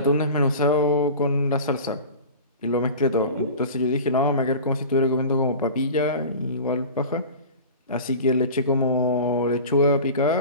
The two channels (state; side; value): inverted; both; correlation -0.36